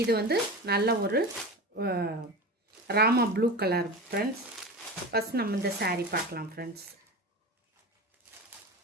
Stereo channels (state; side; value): normal; both; correlation 0.28